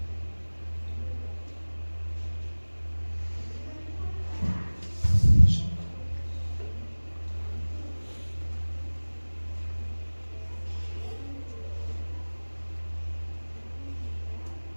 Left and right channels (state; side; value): inverted; both; correlation -1.00